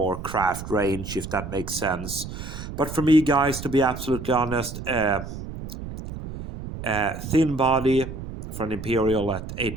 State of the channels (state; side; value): noise; right; rumble, 9 dB below the sound